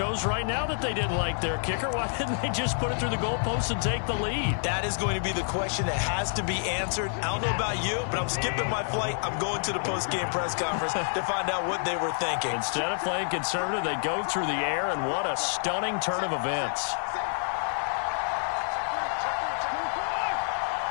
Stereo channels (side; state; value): right; silent; 59 dB below the other